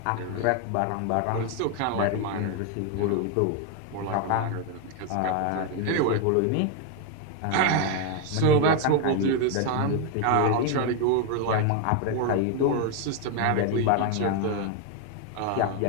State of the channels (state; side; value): different; both; correlation 0.01